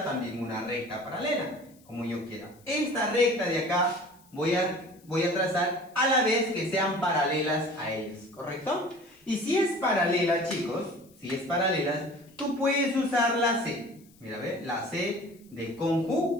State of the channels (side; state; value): left; noise; hiss, 29 dB below the sound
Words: también una recta paralela, como yo quiera. Esta recta de acá voy a trazar a la vez que sean paralelas a ellas, ¿correcto? Y si es paralela, chicos, si es paralela, tú puedes usar la C. Mira, ¿ve? La C de